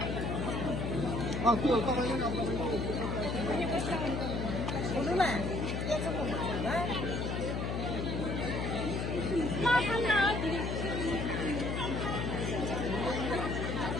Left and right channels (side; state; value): left; noise; hum, 1 dB below the sound